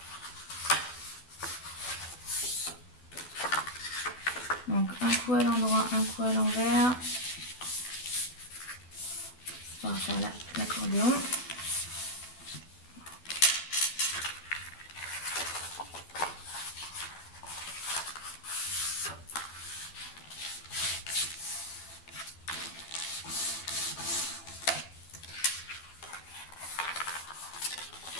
Donc un coup à l'endroit, un coup à l'envers. On va faire l'accordéon.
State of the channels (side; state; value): right; late; 12 ms